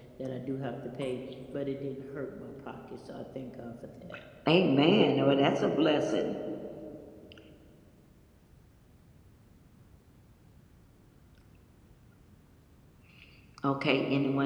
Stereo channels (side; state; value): both; identical; correlation 1.00